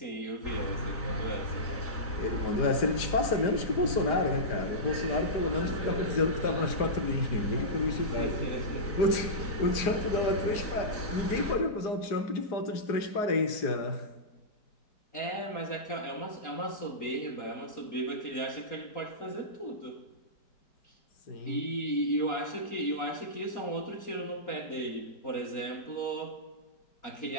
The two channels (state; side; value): late; right; 4.9 ms